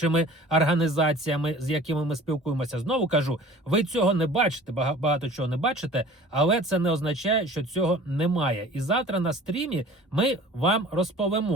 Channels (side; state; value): both; normal; correlation 0.45